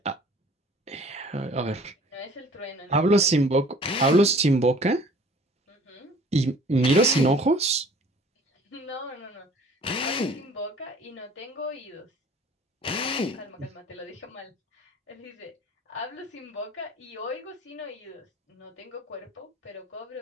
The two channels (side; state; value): both; normal; correlation 0.51